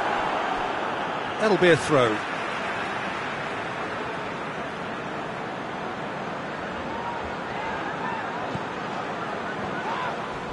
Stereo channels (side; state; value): both; identical; correlation 1.00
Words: That'll be a throw.